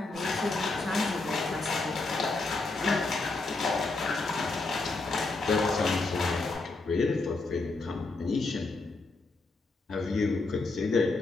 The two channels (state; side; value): quieter; right; 3.5 dB